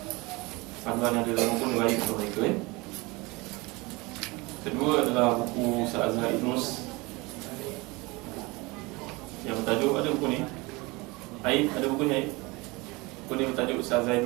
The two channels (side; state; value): left; quieter; 24.4 dB